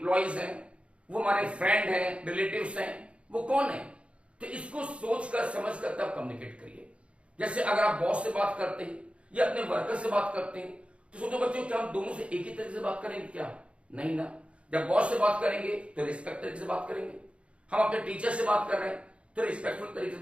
हैं, वो हमारे फ्रेंड हैं, रिलेटिव्स हैं, वो कौन है। तो इसको सोचकर समझकर तब कम्युनिकेट करिए। जैसे अगर आप बॉस से बात करते हैं या अपने वर्कर से बात करते हैं तो सोचो बच्चों क्या हम दोनों से एक ही तरीके से बात करेंगे क्या? नहीं ना। जब बॉस से बात करेंगे तो रिस्पेक्ट तरीके से बात करेंगे, हम अपने टीचर से बात कर रहे हैं तो रिस्पेक्टफुल तरीके से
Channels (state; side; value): late; left; 0.060 ms